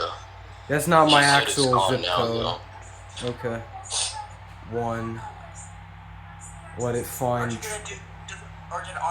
That's not my He said actual it's zip gone code. now, Okay. 1. Let it find. Or did it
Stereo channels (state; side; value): identical; both; correlation 1.00